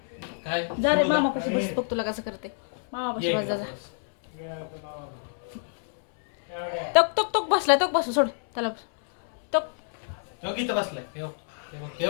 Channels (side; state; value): right; silent; 60 dB below the other